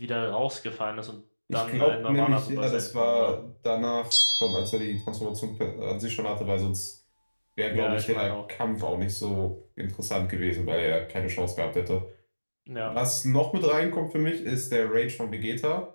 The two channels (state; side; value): inverted; both; correlation -1.00